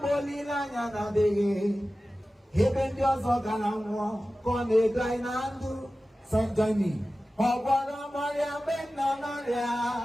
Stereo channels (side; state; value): both; normal; correlation 0.95